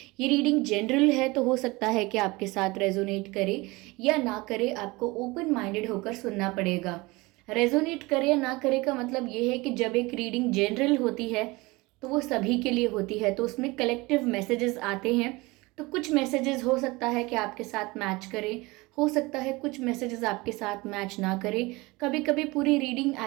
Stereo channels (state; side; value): quieter; left; 23.1 dB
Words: ये रीडिंग जनरल है तो हो सकता है कि आपके साथ रेजोनेट करे या ना करे, आपको ओपन माइंडेड होकर सुनना पड़ेगा। रेजोनेट करे या ना करे का मतलब ये है कि जब एक रीडिंग जनरल होती है तो वो सभी के लिए होती है, तो उसमें कलेक्टिव मैसेजेस आते हैं। तो कुछ मैसेजेस हो सकता है कि आपके साथ मैच करें, हो सकता है कुछ मैसेजेस आपके साथ मैच ना करें। कभी कभी पूरी रीडिंग